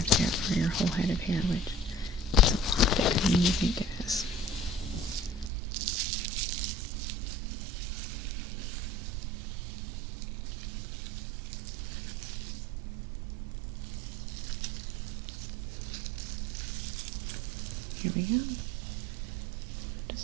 to do it for your whole head of hair, which is a lot bigger than you think it is. Here we go.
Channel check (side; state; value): left; drops out; at 5.5 s